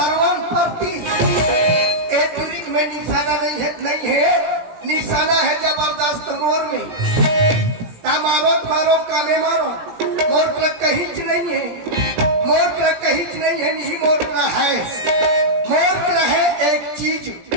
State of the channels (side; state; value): left; late; 17 ms